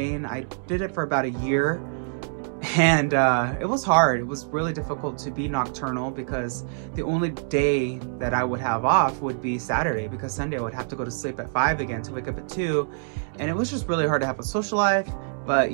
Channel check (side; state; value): left; silent; digital silence